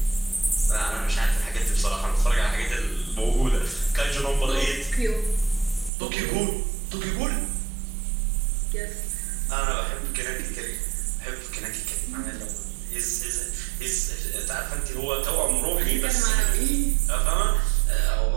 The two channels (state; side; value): drops out; left; at 5.9 s